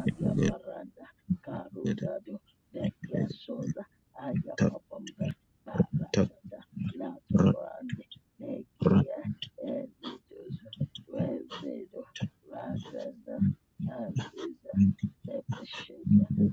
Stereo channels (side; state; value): both; identical; correlation 1.00